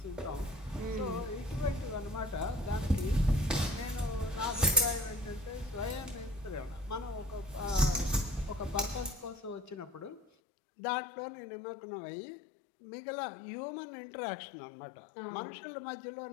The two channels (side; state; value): right; drops out; at 10.2 s